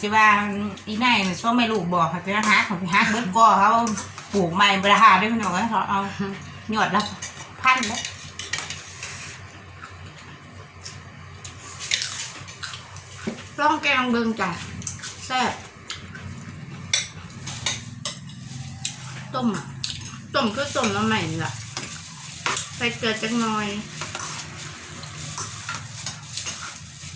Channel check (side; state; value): both; identical; correlation 1.00